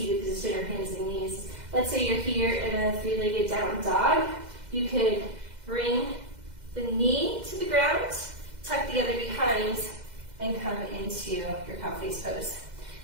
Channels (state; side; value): late; left; 2.0 ms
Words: position or hands and knees. Let's say you're here in a 3-legged down dog. You could bring the knee to the ground, tuck the other behind, and come into your cow face pose.